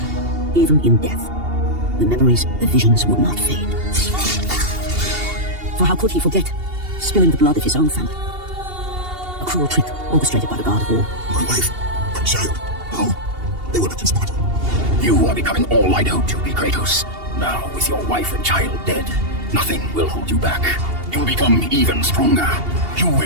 Even in death, the memories, the visions would not fade. For how could he forget spilling the blood of his own family? A cruel trick orchestrated by the god of war. My wife, my child, how? They were left in Sparta. You are becoming all I know to be, Kratos. Now, with your wife and child dead, nothing will hold you back. You'll become even stronger. You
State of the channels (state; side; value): late; left; 2.8 ms